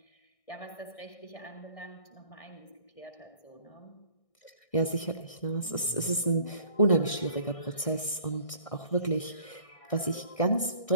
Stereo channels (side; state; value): right; late; 1.6 ms